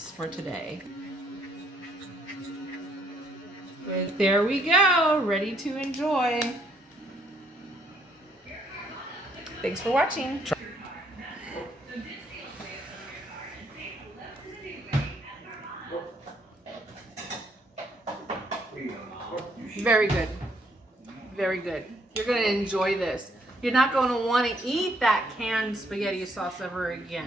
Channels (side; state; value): both; normal; correlation 0.68